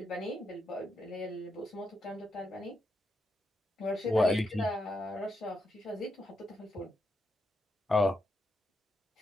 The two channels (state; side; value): normal; both; correlation 0.83